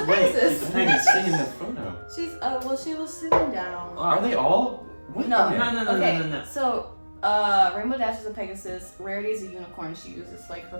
a wings. Pegasus. She's a I didn't Pegasus. see in the photo. She's well, she was sitting down. Are they all? What? No, Okay. No. So, Rainbow Dash is a Pegasus. Rarity is a unicorn. She uses like her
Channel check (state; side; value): inverted; both; correlation -1.00